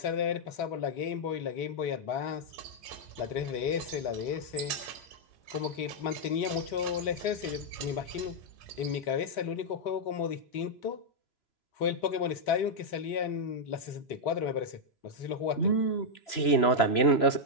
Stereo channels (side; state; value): right; late; 3.0 ms